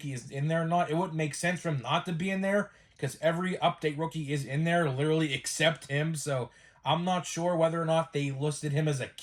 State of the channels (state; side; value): identical; both; correlation 1.00